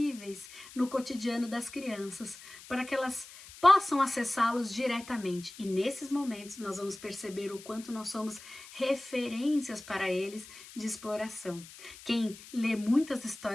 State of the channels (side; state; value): left; noise; hiss, 17 dB below the sound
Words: no cotidiano das crianças, para que elas possam acessá-los diretamente. E nesses momentos nós vamos perceber o quanto nós somos referências para eles de exploração. Quem lê muitas